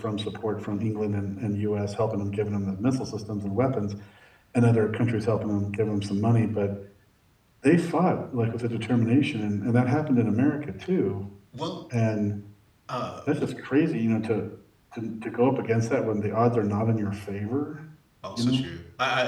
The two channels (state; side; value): identical; both; correlation 1.00